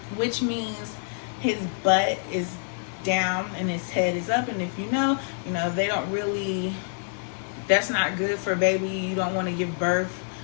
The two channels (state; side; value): silent; right; 60 dB below the other